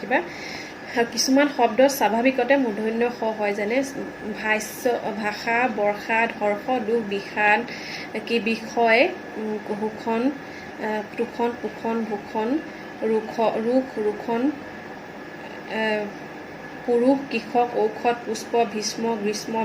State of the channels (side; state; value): both; identical; correlation 1.00